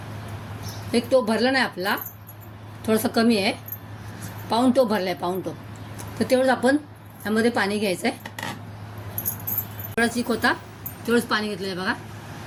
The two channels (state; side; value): identical; both; correlation 1.00